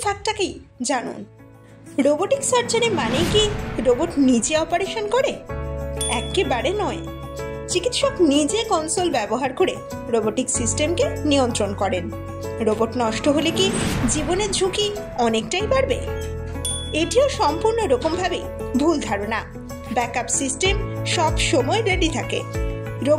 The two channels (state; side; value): identical; both; correlation 1.00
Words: ফ্যাক্টটাকেই জানুন। রোবোটিক সার্জারি মানে কি রোবট নিজে অপারেশন করে? একেবারে নয়। চিকিৎসক নিজে কনসোল ব্যবহার করে রোবোটিক সিস্টেমকে নিয়ন্ত্রণ করেন। রোবট নষ্ট হলে কি জীবনের ঝুঁকি অনেকটাই বাড়বে? এটিও সম্পূর্ণ রকমভাবে ভুল ধারণা। ব্যাকআপ সিস্টেম সব সময় রেডি থাকে।